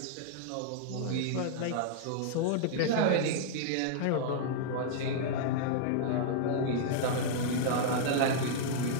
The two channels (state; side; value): different; both; correlation -0.01